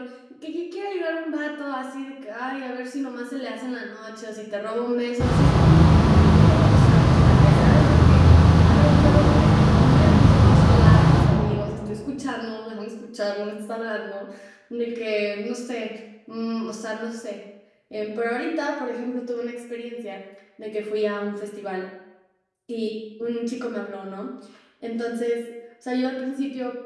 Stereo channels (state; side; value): identical; both; correlation 1.00